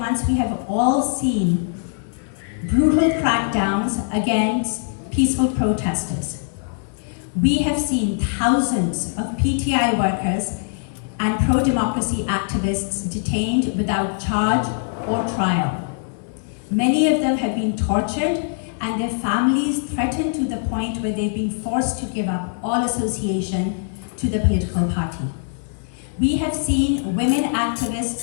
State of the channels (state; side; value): silent; right; digital silence